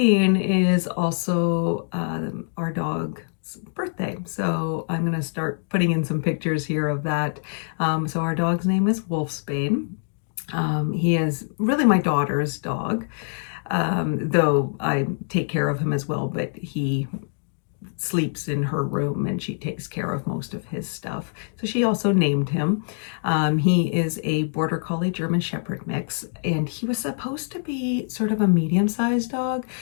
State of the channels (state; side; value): silent; right; digital silence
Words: is also our dog's birthday, so I'm going to start putting in some pictures here of that. So our dog's name is Wolfsbane. He is really my daughter's dog, though I take care of him as well, but he sleeps in her room and she takes care of most of his stuff. So she also named him. He is a Border Collie German Shepherd mix, and he was supposed to be sort of a medium-sized dog.